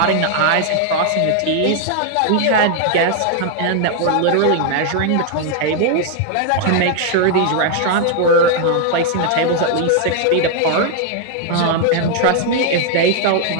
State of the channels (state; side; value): different; both; correlation 0.00